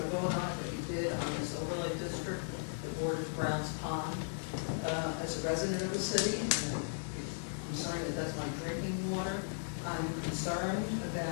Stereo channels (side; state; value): right; silent; digital silence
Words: to vote on it, but you did on this overlay district that borders Browns Pond. As a resident of the city, I'm concerned that that's my drinking water. I'm concerned